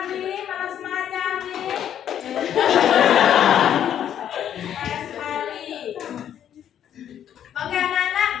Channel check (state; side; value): quieter; right; 9.9 dB